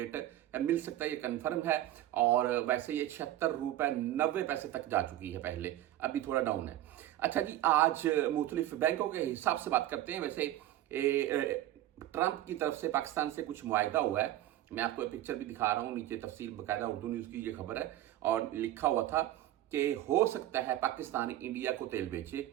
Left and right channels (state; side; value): quieter; left; 13.7 dB